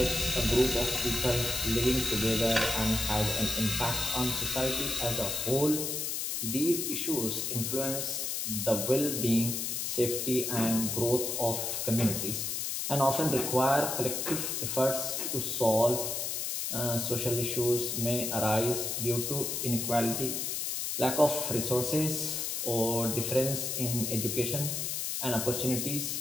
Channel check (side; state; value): left; noise; hiss, 2 dB below the sound